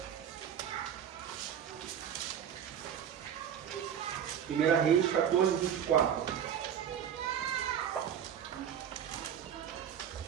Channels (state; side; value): quieter; left; 9.0 dB